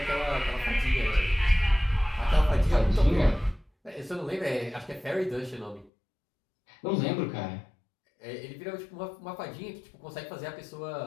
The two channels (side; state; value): right; drops out; at 5.9 s